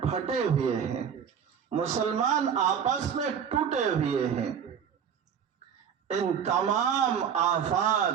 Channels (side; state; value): left; quieter; 7.7 dB